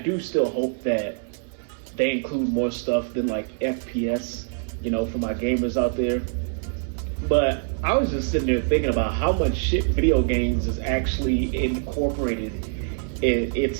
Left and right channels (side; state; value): left; silent; 60 dB below the other